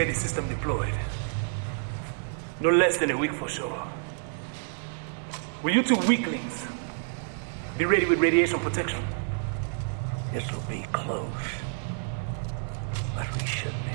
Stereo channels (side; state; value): left; silent; digital silence